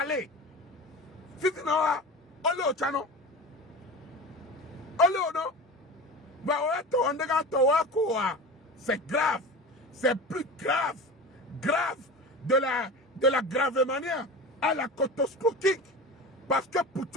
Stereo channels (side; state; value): both; normal; correlation 0.31